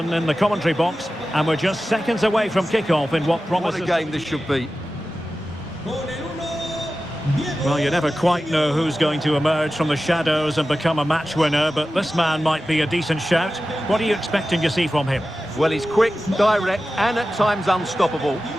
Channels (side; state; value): both; normal; correlation 0.94